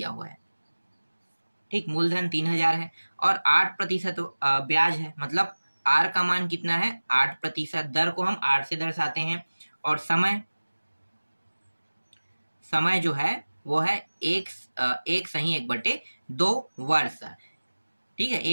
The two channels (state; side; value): inverted; both; correlation -1.00